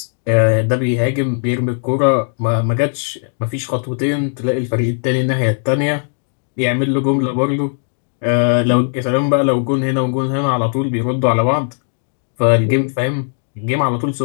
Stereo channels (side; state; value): right; silent; digital silence